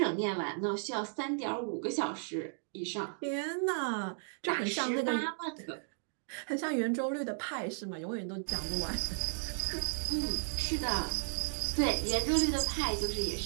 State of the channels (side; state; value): left; silent; digital silence